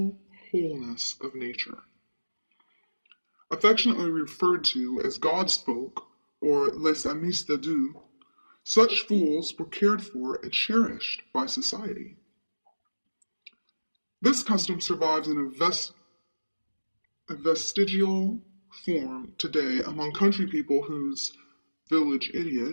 wholeness of nature. Affectionately referred to as God's folk, or les amis de Dieu, such fools were cared for and cherished by society. This custom survives in a vestigial form today among country people whose village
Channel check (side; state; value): both; inverted; correlation -1.00